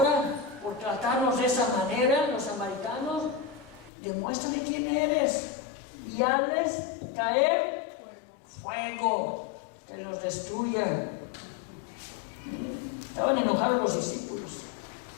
por tratarnos de esa manera, los samaritanos, demuéstrale quién eres y hazles caer fuego, que los destruya. Estaban enojados los discípulos,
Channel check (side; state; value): right; drops out; at 3.9 s